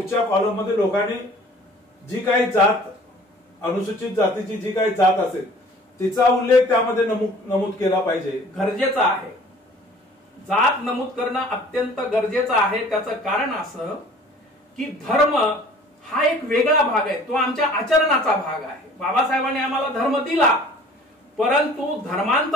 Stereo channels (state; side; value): normal; both; correlation 0.50